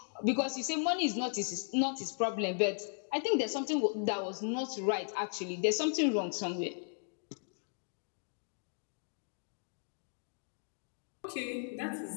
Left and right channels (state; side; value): silent; right; 54 dB below the other